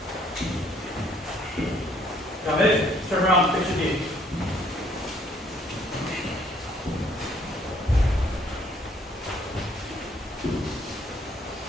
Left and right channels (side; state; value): both; normal; correlation 0.63